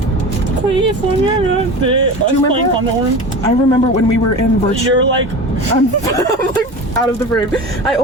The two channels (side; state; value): both; normal; correlation 0.31